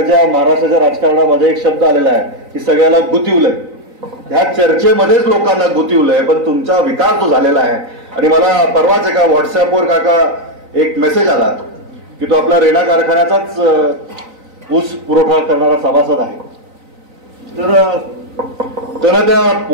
महाराष्ट्राच्या राजकारणामध्ये एक शब्द आलेला आहे की सगळ्याला गुंतवलंय. ह्या चर्चेमध्येच लोकांना गुंतवलंय, पण तुमचा विकास जो झालेला आहे. आणि मला परवाच एका व्हॉट्सअपवर काका एक मेसेज आला की तो आपला रेणा कारखान्याचाच ऊस पुरवठा करणारा सभासद आहे. तर त्या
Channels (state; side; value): late; left; 3.9 ms